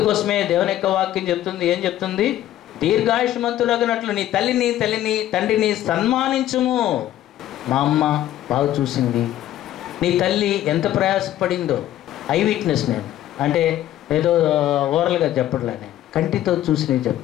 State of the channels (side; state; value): right; quieter; 13.0 dB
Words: దేవుని యొక్క వాక్యం చెప్తుంది. ఏం చెప్తుంది? దీర్ఘాయుష్మంతులగినట్లు నీ తండ్రిని సన్మానించుము. మా అమ్మ బాగా చూసింది, నీ తల్లి ఎంత ప్రయాసపడిందో. ఐ విట్నెస్ నేను, అంటే ఏదో ఓరల్గా చెప్పట్లేనే, కంటితో చూసి నేను